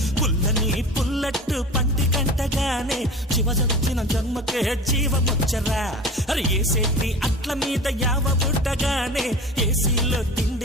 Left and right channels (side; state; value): both; normal; correlation 0.36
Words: పుల్లని పుల్లట్టు పంటి కంటగానే జీవదొచ్చిన జన్మకే జీవమొచ్చరా. అరే ఏసేటి అట్ల మీద యావ బుట్టగానే ఏసీలో